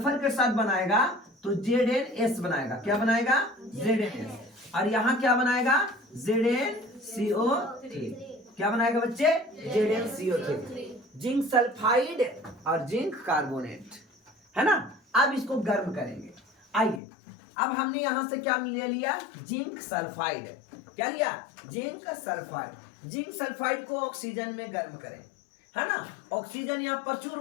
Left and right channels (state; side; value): drops out; right; at 17.0 s